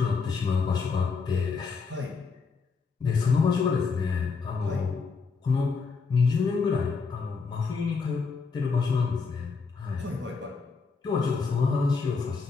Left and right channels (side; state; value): right; quieter; 4.8 dB